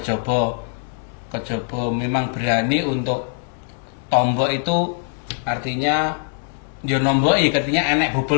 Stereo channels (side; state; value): right; silent; 64 dB below the other